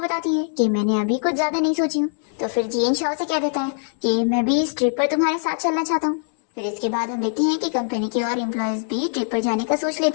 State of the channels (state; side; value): silent; right; digital silence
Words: है कि मैंने अभी कुछ ज्यादा नहीं सोची हूँ। तो फिर जियन शाओ से कह देता है कि मैं भी इस ट्रिप पर तुम्हारे साथ चलना चाहता हूँ। फिर इसके बाद हम देखते हैं कि कंपनी के और एम्प्लॉयज भी ट्रिप पर जाने का सोच